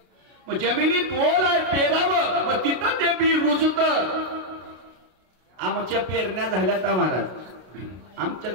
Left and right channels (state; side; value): late; left; 32 ms